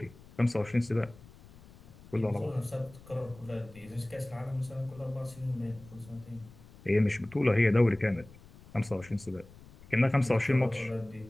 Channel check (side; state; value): left; noise; rumble, 22 dB below the sound